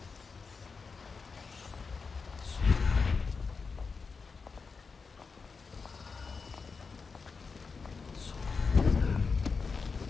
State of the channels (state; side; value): quieter; right; 4.9 dB